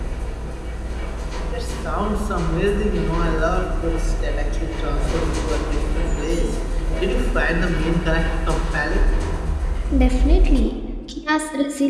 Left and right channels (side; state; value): both; identical; correlation 1.00